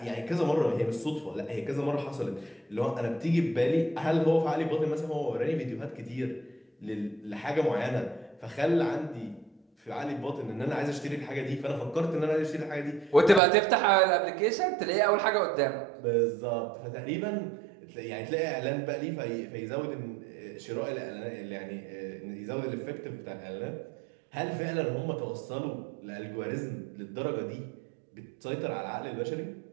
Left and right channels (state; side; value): drops out; left; at 13.4 s